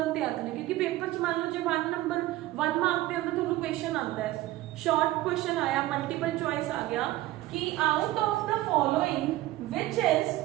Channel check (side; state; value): left; quieter; 16.4 dB